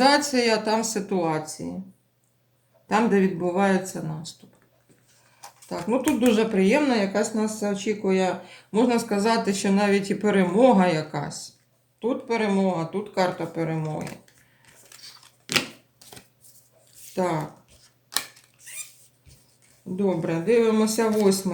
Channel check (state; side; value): identical; both; correlation 1.00